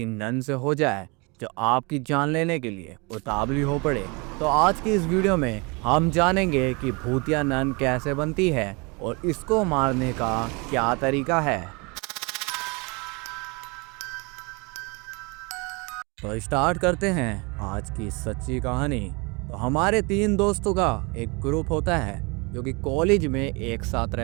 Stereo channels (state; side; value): quieter; left; 29.1 dB